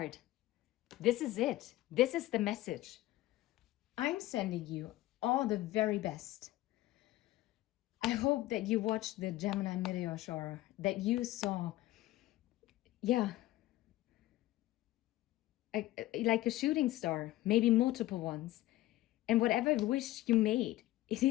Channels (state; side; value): quieter; right; 16.2 dB